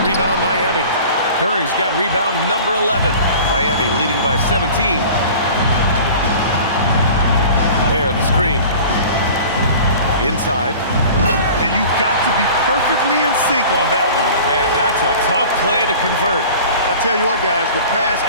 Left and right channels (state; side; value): inverted; both; correlation -0.42